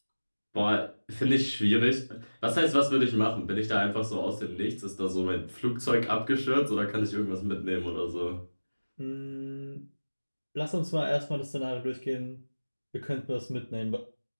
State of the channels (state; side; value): inverted; both; correlation -1.00